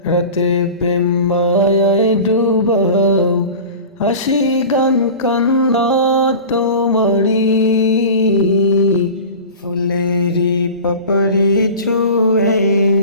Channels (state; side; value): inverted; both; correlation -0.35